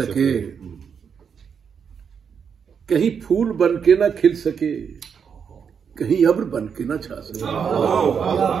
कहीं फूल बन के ना खिल सके, कहीं अब्र बन के ना छा सके।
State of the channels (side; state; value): left; quieter; 6.9 dB